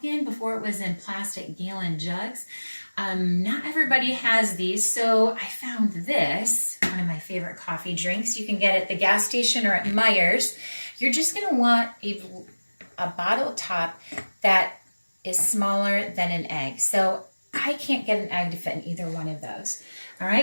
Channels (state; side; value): inverted; both; correlation -1.00